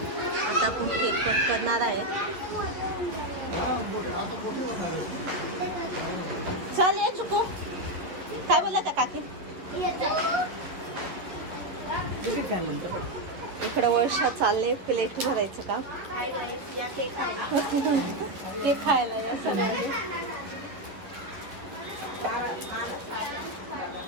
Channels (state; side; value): late; left; 11 ms